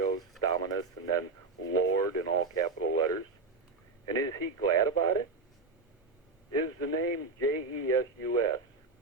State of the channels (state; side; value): quieter; left; 3.9 dB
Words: Dominus, and then Lord in all capital letters? And is he glad about it? Is the name Jesus